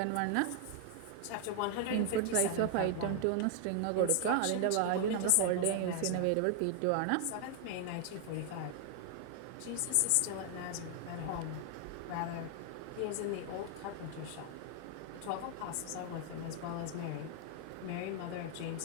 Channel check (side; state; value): both; different; correlation 0.00